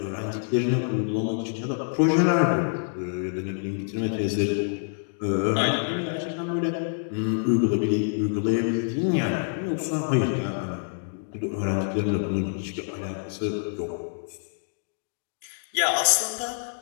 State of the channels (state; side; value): silent; right; digital silence